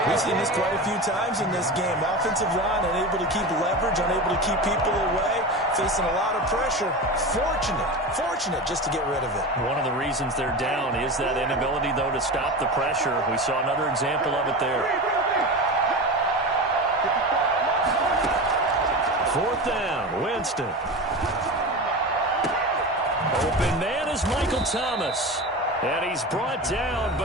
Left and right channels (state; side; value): normal; both; correlation 0.26